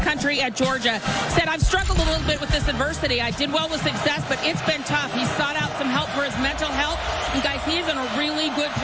country at Georgia. Said, I've struggled a little bit with this adversity. I did well with success, but it's been tough. He sought out some help for his mental health, and guys, he is in a really good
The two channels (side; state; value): both; identical; correlation 1.00